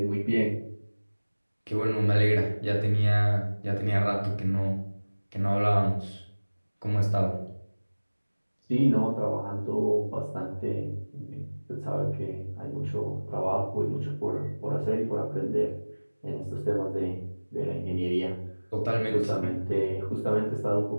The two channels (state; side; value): inverted; both; correlation -1.00